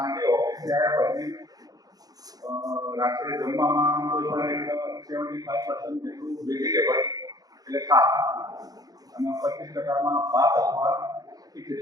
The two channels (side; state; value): left; late; 0.18 ms